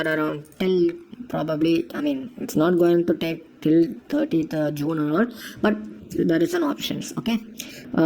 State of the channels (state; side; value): identical; both; correlation 1.00